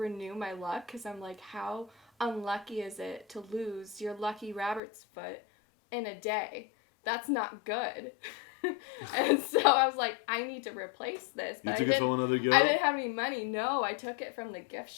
my luck because I'm like, how unlucky is it to lose your lucky rabbit's foot in a day? That's not good. And so I was like, I need to replace this. But you took it from another girl? I didn't have any money. No, I took it from the gift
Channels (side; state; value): right; drops out; at 4.8 s